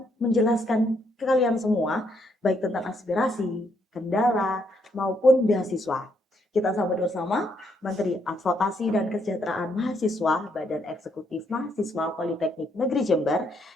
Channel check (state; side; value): normal; both; correlation 0.74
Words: menjelaskan ke kalian semua, baik tentang aspirasi, kendala, maupun beasiswa. Kita sambut bersama Menteri Advokasi dan Kesejahteraan Mahasiswa Badan Eksekutif Mahasiswa Politeknik Negeri Jember,